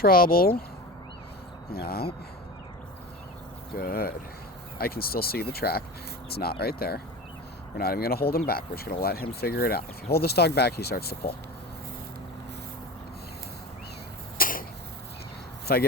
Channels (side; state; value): both; normal; correlation 0.31